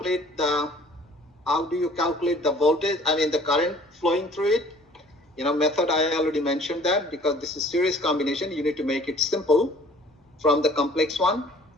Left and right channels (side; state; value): both; normal; correlation 0.53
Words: the voltage, I mean the current flowing through it? You know, method I already mentioned that, because this is series combination, you need to make it simple from the complex one,